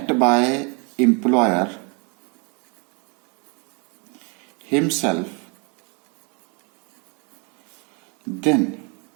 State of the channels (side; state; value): left; quieter; 34.0 dB